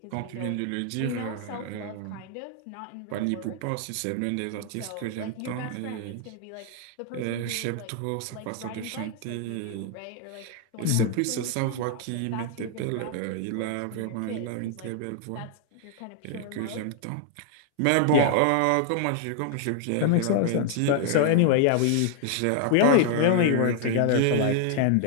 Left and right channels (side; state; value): both; different; correlation 0.00